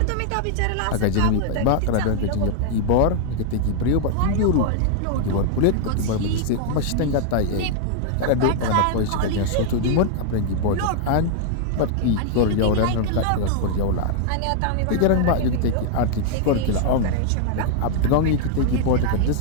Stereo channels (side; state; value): both; different; correlation -0.01